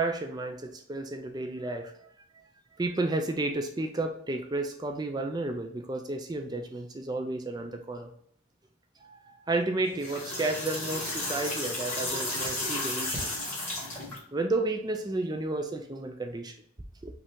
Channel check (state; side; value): normal; both; correlation 0.43